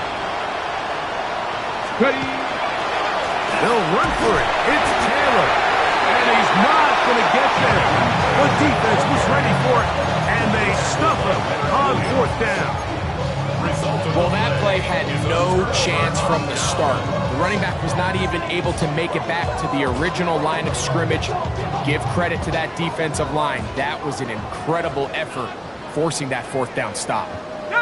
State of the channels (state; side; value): identical; both; correlation 1.00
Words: Ready. They'll run for it. It's Taylor. And he's not going to get there. The defense was ready for it, and they stuff him on fourth down. Well, that play had no chance from the start. The running back was not even able to make it back to the original line of scrimmage. Give credit to that defensive line. That was an incredible effort, forcing that fourth down stop.